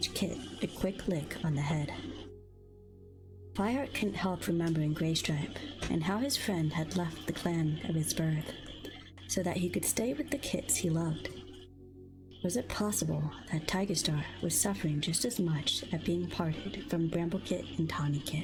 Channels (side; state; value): both; identical; correlation 1.00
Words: kit a quick lick on the head. Fireheart couldn't help remembering Graystripe and how his friend had left the clan of his birth so that he could stay with the kits he loved. Was it possible that Tiger Star was suffering just as much at being parted from Bramble Kit and Tawny Kit?